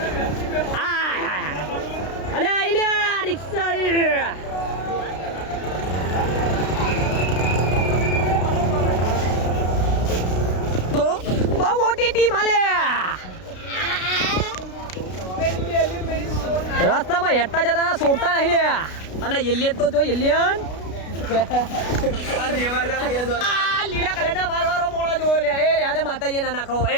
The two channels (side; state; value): right; late; 33 ms